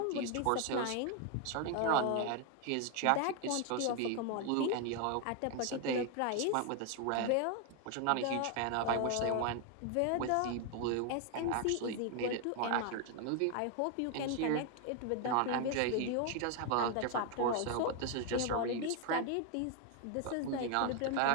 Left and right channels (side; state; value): both; different; correlation 0.01